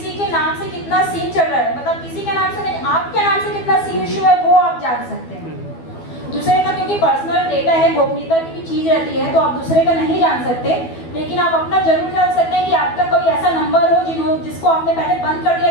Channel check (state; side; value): late; right; 12 ms